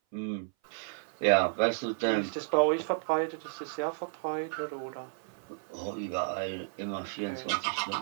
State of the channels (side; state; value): left; silent; 56 dB below the other